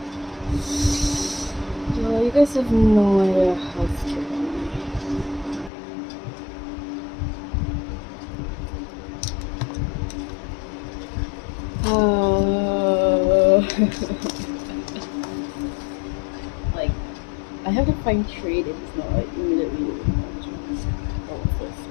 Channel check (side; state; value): right; drops out; at 5.7 s